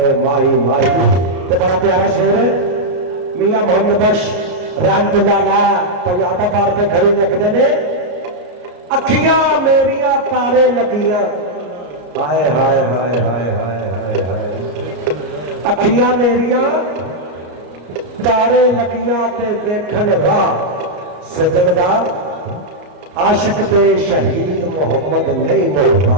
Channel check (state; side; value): late; left; 34 ms